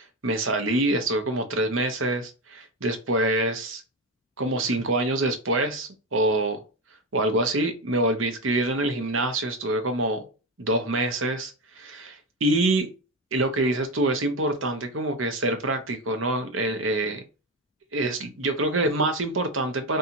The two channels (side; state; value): both; normal; correlation 0.16